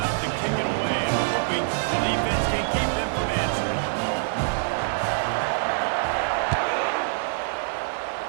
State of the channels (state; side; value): silent; left; digital silence